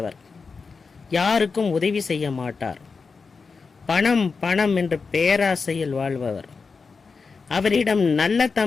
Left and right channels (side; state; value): right; quieter; 4.8 dB